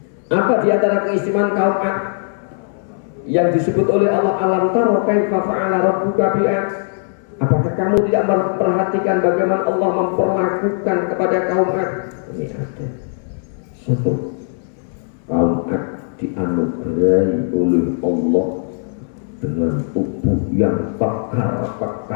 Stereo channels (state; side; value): silent; right; 64 dB below the other